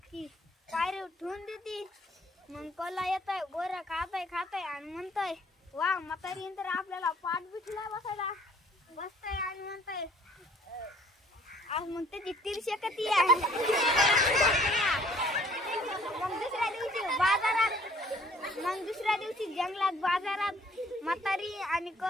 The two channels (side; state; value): both; normal; correlation 0.57